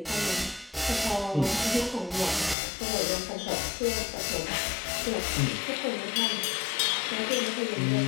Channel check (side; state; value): right; drops out; at 2.6 s